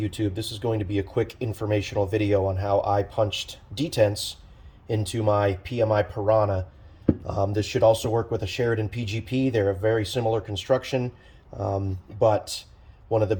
this is going to be a quick informational video on how I punched detents into my PMI Pirahna. This should also work with a Sheridan PGP. They're a very similar construction, but one of the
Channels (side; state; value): both; identical; correlation 1.00